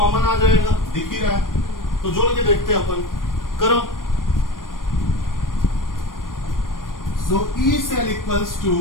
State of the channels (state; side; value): late; right; 0.90 ms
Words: आ जाएगा, दिख ही रहा है। तो जोड़ के देखते हैं अपन। करो। So E cell equals to,